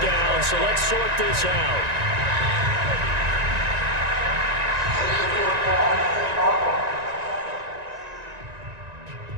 so let's sort this out.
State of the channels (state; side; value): late; left; 1.9 ms